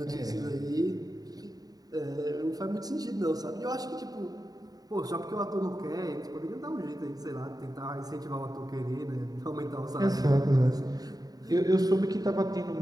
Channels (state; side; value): late; left; 0.18 ms